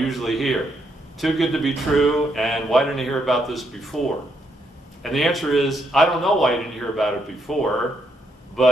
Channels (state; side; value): normal; both; correlation 0.76